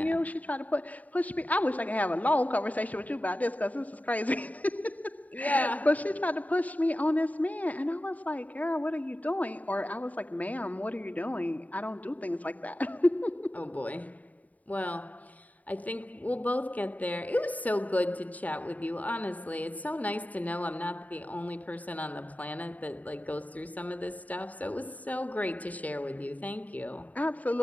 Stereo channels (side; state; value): right; late; 0.074 ms